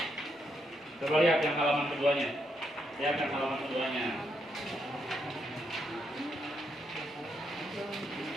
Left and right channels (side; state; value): both; normal; correlation 0.79